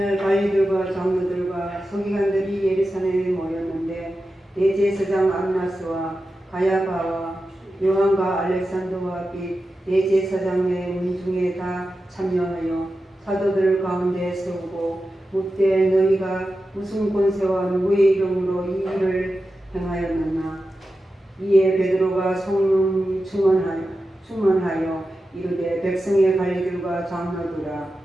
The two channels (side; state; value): both; normal; correlation 0.92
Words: 관리들과 장로들과 서기관들이 예루살렘에 모였는데 대제사장 안나스와 가야바와 요한과 알렉산더와 및 대제사장의 문중에 다 참여하여 사도들 가운데 세우고 묻되 너희가 무슨 권세와 누구의 이름으로 이 일을 행하였느냐. 이에 베드로가 성령 충만하여 이르되 백성의 관리들과 장로들아.